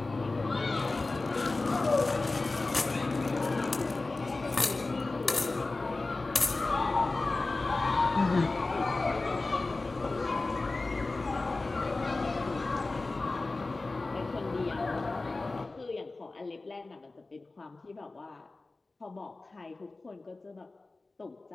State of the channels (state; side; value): quieter; right; 3.3 dB